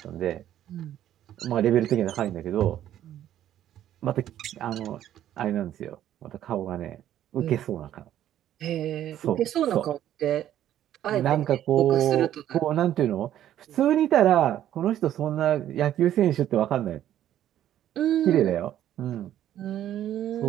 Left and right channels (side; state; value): left; quieter; 11.7 dB